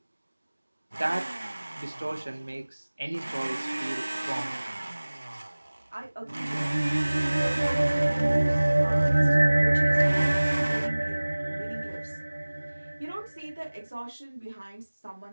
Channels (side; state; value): both; inverted; correlation -1.00